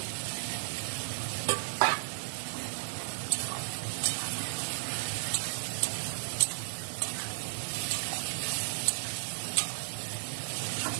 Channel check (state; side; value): silent; left; digital silence